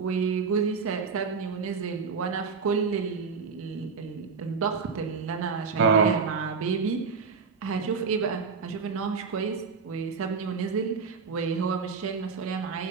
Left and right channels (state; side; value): quieter; left; 5.3 dB